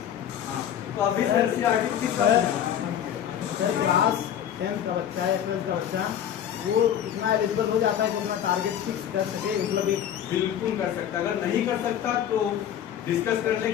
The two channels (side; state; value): right; quieter; 9.9 dB